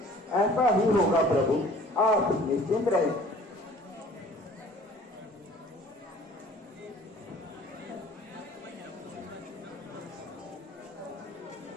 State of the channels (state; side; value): normal; both; correlation 0.51